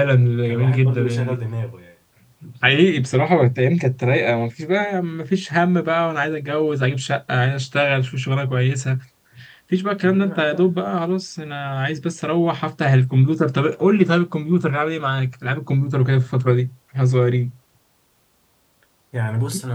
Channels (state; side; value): identical; both; correlation 1.00